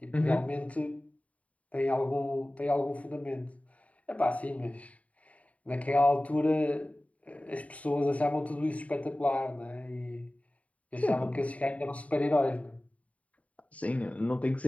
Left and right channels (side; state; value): right; late; 0.068 ms